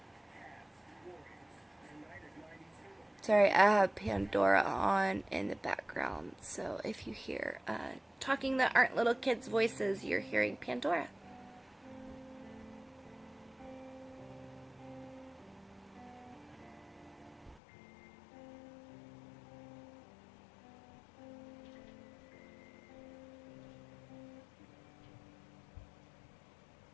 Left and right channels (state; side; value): drops out; right; at 17.6 s